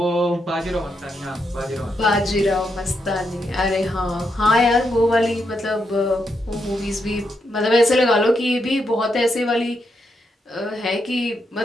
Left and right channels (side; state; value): both; normal; correlation 0.81